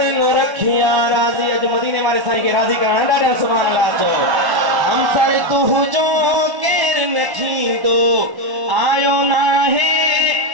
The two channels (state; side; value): late; left; 1.1 ms